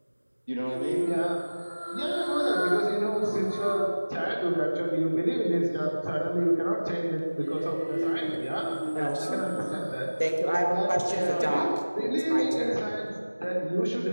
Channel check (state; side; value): inverted; both; correlation -1.00